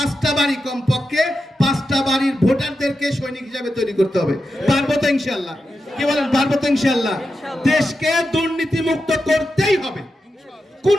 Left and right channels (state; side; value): normal; both; correlation 0.89